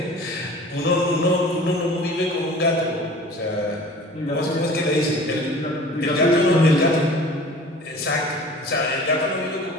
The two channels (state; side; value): normal; both; correlation 0.44